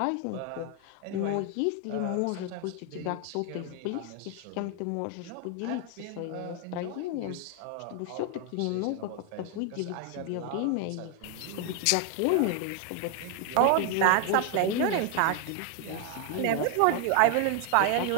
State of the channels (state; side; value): different; both; correlation 0.01